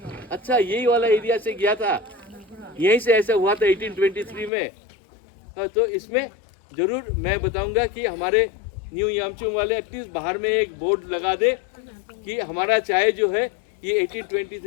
अच्छा, यही वाला एरिया से गया था, यहीं से ऐसा हुआ था 1823 में। तो इसमें ज़रूर मैं बताऊंगा कि हमारे न्यू यामचुंग वाले एटलीस्ट बाहर में एक बोर्ड लगा दे कि हमारा चाय जो है ये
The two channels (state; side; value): drops out; right; at 4.5 s